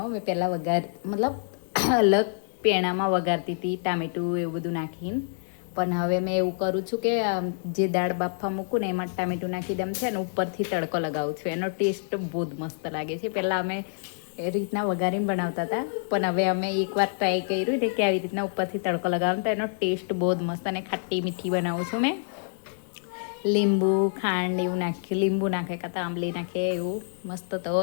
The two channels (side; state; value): right; silent; digital silence